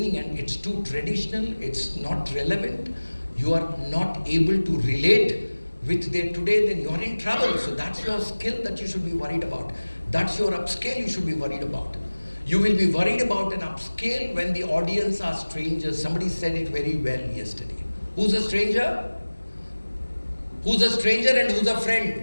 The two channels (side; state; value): both; inverted; correlation -1.00